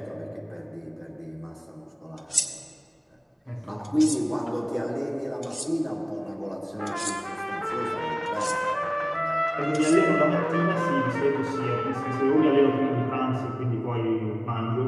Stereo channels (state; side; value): identical; both; correlation 1.00